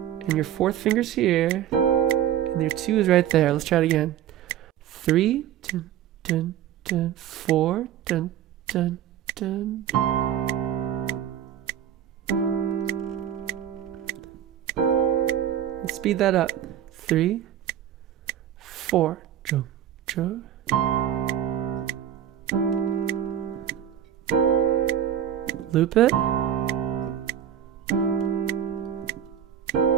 And your 4th finger's here. And your 2 is right there. Let's try it again. 3, dun, dun, dun, 4, dun, dun, dun. Let's speed that up. 3, 4. Jump, jump. Loop it.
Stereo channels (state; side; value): quieter; left; 10.3 dB